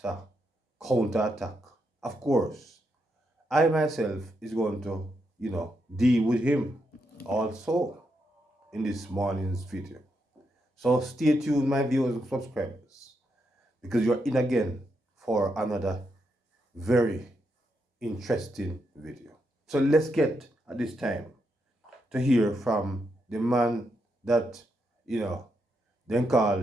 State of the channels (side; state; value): both; normal; correlation 0.82